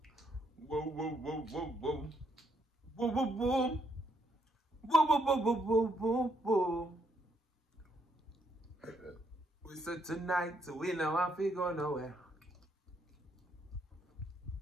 Whoa, whoa, whoa, whoa, whoa. Whoa, whoa, whoa. Whoa, whoa, whoa, whoa, whoa, whoa, whoa. We said tonight, so we know if we go nowhere.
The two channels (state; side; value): normal; both; correlation 0.74